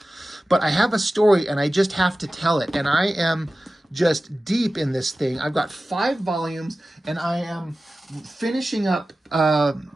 But I have a story and I just have to tell it. And I am just deep in this thing. I've got 5 volumes and I am finishing up.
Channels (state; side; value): normal; both; correlation 0.95